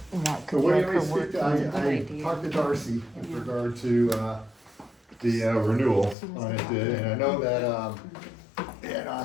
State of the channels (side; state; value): right; drops out; at 6.2 s